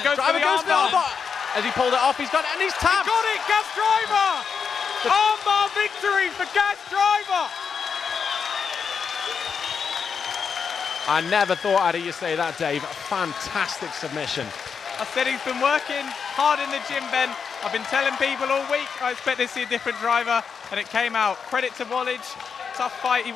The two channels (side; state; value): right; quieter; 6.2 dB